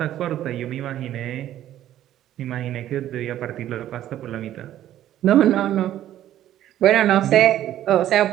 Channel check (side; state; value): left; quieter; 12.4 dB